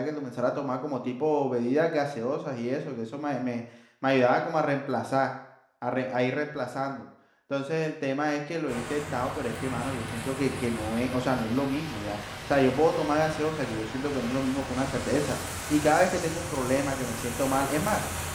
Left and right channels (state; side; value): identical; both; correlation 1.00